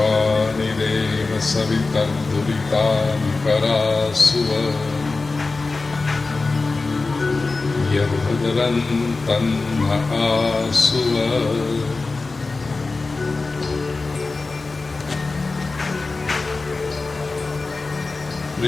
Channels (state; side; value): quieter; right; 3.7 dB